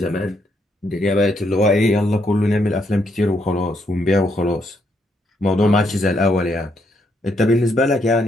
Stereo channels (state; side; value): normal; both; correlation 0.75